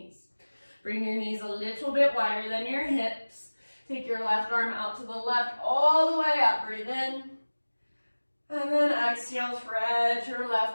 Bring your knees a little bit wider than your hips. Take your left arm out to the left, all the way up. Breathe in. And then exhale, thread your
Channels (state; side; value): inverted; both; correlation -1.00